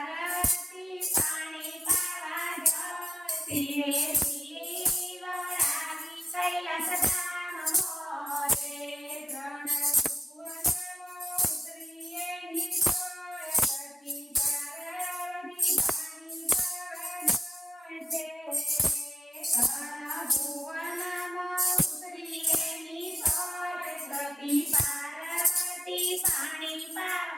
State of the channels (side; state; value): both; normal; correlation 0.96